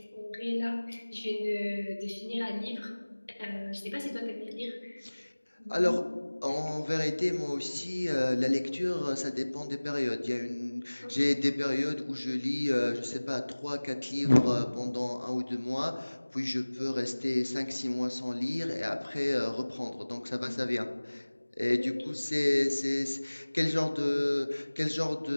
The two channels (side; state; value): both; inverted; correlation -1.00